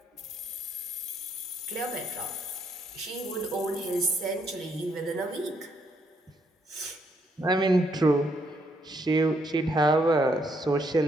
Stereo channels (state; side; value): normal; both; correlation 0.73